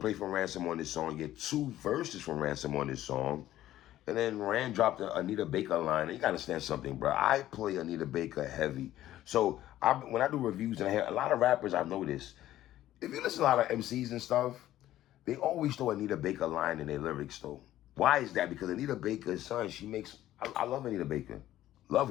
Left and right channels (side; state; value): right; quieter; 13.7 dB